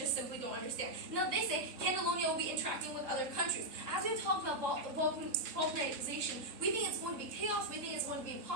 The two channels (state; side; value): late; left; 3.7 ms